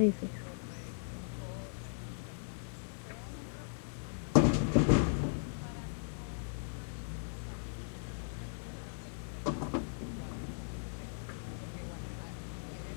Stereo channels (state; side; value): silent; right; digital silence